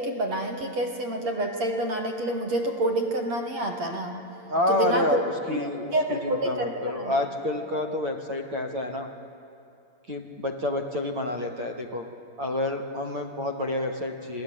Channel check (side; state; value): left; late; 8.7 ms